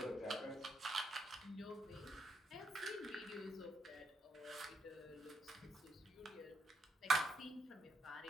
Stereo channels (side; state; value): both; normal; correlation 0.78